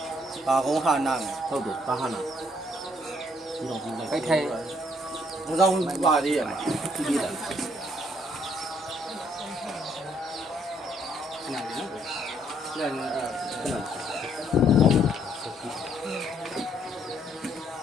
ဘာကုန်းဟာနာမယ်ဟုတ်တယ်ဘာခနာဒီတော့ဒီလိုက်ထိုက်ဘုရားဝင်ပါသေးရမှာကြည့်ရတာနားနော်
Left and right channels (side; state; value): both; normal; correlation 0.68